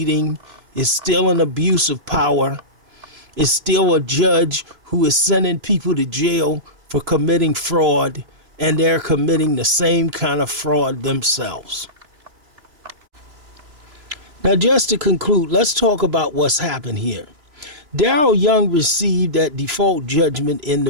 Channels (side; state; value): left; late; 3.0 ms